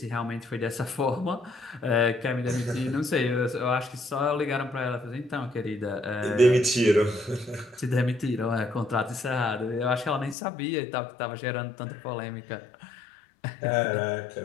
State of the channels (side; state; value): right; drops out; at 10.4 s